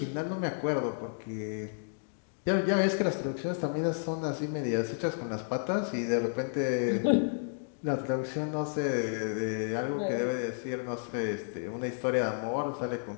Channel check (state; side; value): silent; right; digital silence